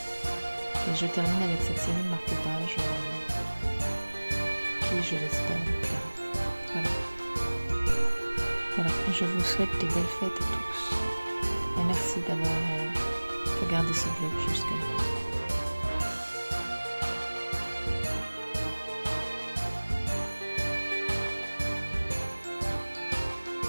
Et je termine avec cette série de marque-pages qui, je l'espère, vous plaira. Voilà, je vous souhaite de belles fêtes à tous. Et merci d'avoir regardé ce vlog jusque-là.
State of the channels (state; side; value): inverted; both; correlation -1.00